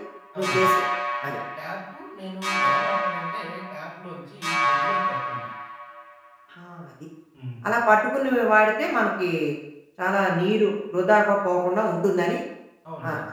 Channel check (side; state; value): both; identical; correlation 1.00